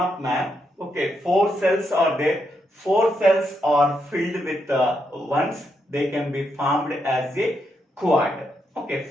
map, okay, 4 cells are there. 4 cells are filled with ones. They can be formed as a quad. Okay,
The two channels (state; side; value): normal; both; correlation 0.80